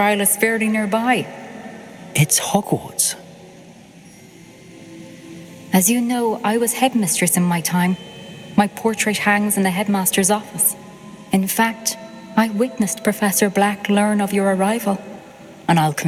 is fairly nearby. It's Hogwarts. As you know, I was headmistress in my time. My portrait hangs in the headmaster's office. In fact, I witnessed Professor Black learn of your arrival. And I'll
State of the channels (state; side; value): identical; both; correlation 1.00